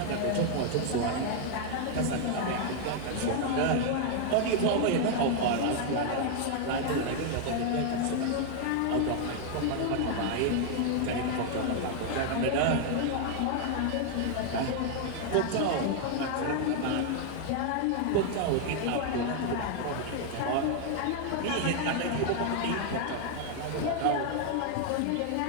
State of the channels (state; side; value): different; both; correlation 0.00